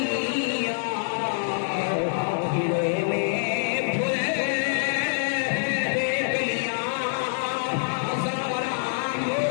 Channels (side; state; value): right; silent; digital silence